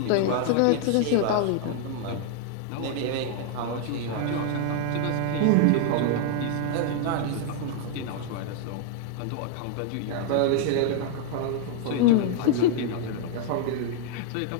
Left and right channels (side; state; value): both; different; correlation 0.00